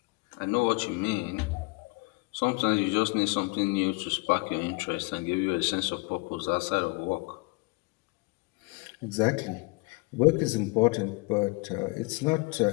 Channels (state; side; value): quieter; right; 27.7 dB